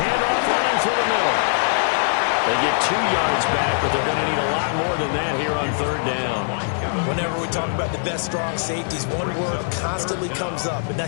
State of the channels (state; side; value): silent; right; digital silence